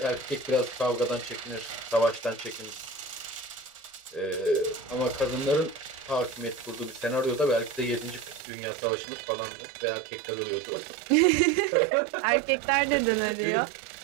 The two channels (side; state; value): left; drops out; at 8.4 s